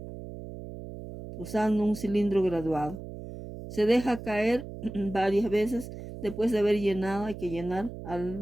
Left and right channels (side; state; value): right; noise; hum, 11 dB below the sound